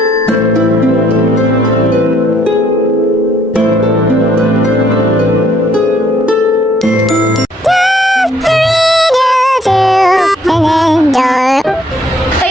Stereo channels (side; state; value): both; normal; correlation 0.65